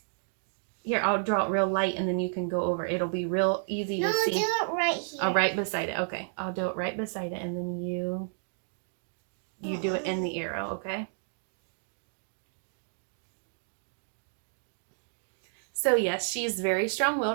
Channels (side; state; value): left; silent; digital silence